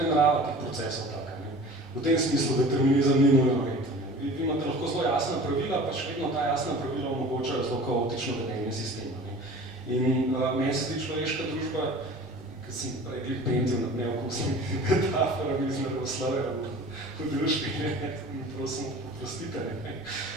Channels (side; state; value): both; normal; correlation 0.41